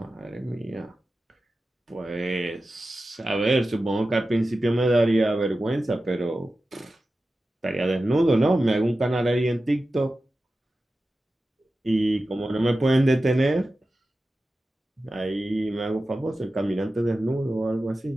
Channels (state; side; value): normal; both; correlation 0.94